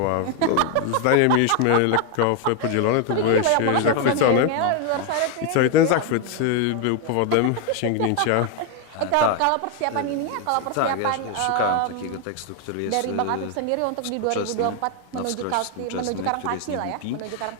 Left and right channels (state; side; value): different; both; correlation 0.01